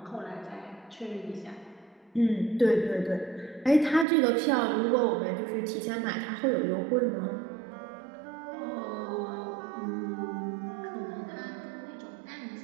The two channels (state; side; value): drops out; left; at 4.0 s